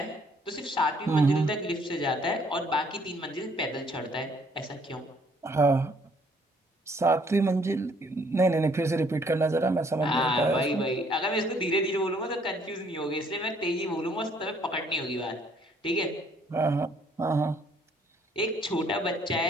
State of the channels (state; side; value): normal; both; correlation 0.64